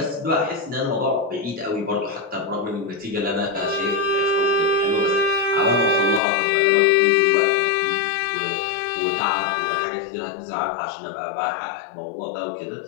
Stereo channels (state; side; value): drops out; right; at 6.2 s